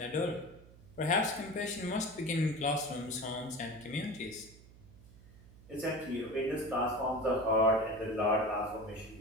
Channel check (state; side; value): noise; right; hum, 21 dB below the sound